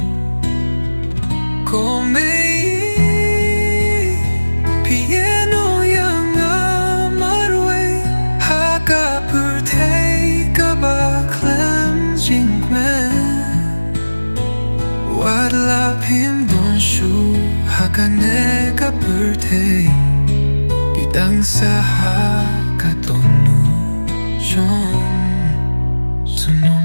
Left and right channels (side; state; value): both; inverted; correlation -1.00